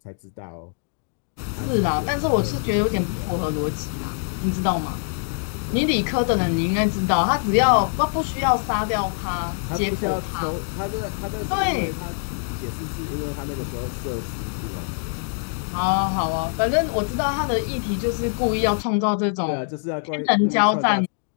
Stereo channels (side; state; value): right; silent; digital silence